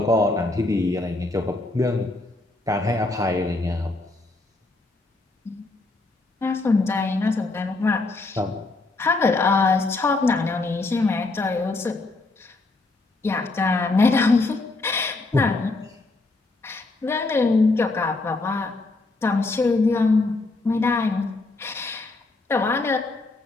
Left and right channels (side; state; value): right; quieter; 3.3 dB